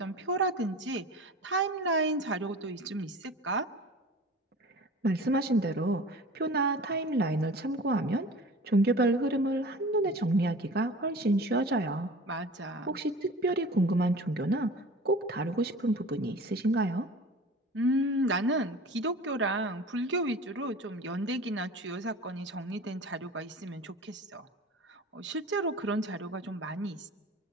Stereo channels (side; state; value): both; normal; correlation 0.39